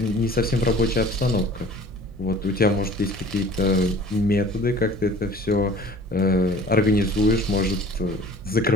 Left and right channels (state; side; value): normal; both; correlation 0.47